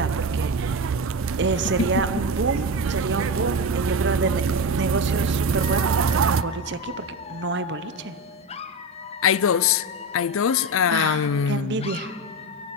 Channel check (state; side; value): normal; both; correlation 0.18